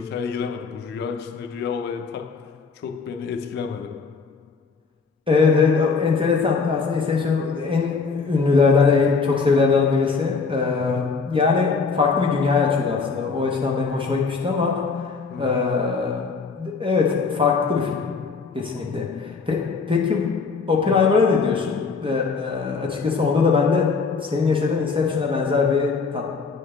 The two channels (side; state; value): right; quieter; 4.7 dB